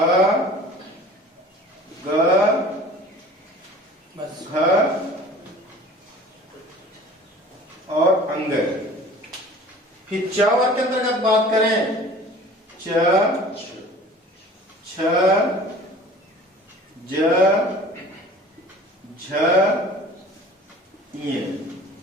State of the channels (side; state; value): both; normal; correlation 0.45